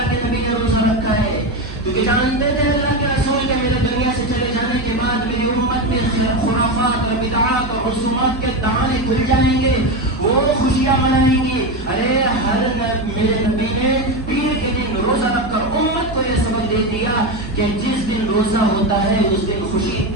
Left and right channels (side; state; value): right; noise; hum, 12 dB below the sound